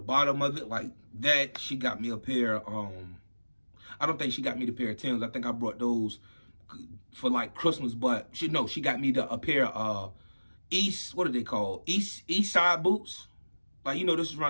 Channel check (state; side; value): inverted; both; correlation -1.00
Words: of it, like that. She got me a pair. I don't think she got me the pair of Timbs. I think I brought those for like Christmas, but she got me a pair of what are they called? East side boots. Like, you know, this is